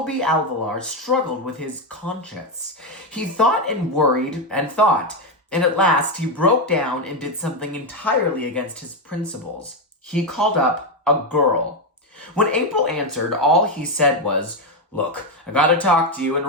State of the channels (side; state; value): both; normal; correlation 0.08